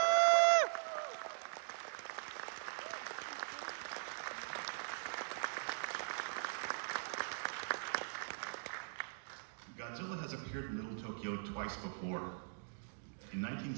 Godzilla has appeared in Little Tokyo twice before. In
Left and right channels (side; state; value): left; silent; digital silence